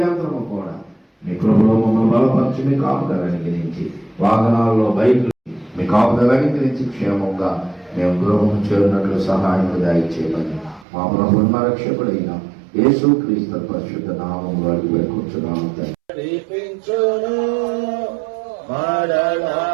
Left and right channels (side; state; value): left; drops out; at 10.9 s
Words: కూడా మీ కృపలో మమ్మల్ని బలపరిచి మీ కాపుదలని గురించి వాహనాల్లో బైకులు మీ కాపుదలని గురించి క్షేమంగా మేము గృహం చేరినట్లు సహాయం దయచేయమని మా ప్రభువు మా రక్షకుడైన యేసుక్రీస్తు పరిశుద్ధ నామములో అడిగి వేడుకొంచున్నాము.